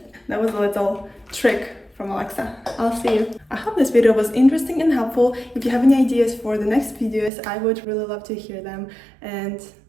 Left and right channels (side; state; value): left; drops out; at 7.3 s